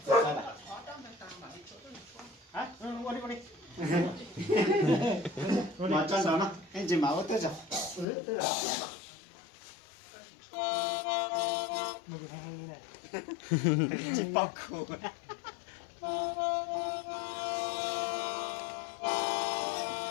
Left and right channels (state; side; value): drops out; right; at 8.1 s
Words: Hả? Qua đi. Mà trần đó nè. Anh chỉ máu tới rồi. Tức là. Mày hay như này. Chỉ bọc khổ.